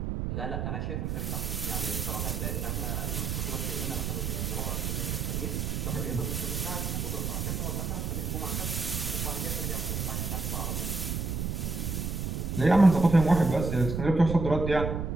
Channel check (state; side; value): noise; right; rumble, 2 dB below the sound